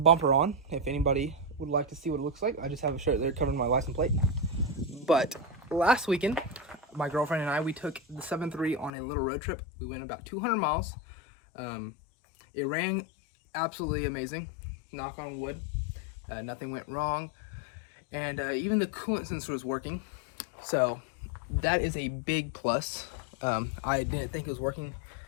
on. If anybody would like to see what it looks like, I just have a shirt there covering my license plate. But last weekend, my girlfriend and I, we took the 7.3 on a little road trip. We went about 200 miles. It ran absolutely amazing, knock on wood. Nothing went wrong. And even the coolant sensor was working. So that is a big plus. I didn't think it was working,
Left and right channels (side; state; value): right; drops out; at 8.9 s